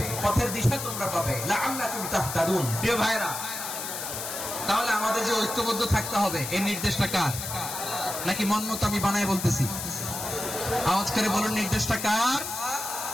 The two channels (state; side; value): noise; left; hiss, 6 dB below the sound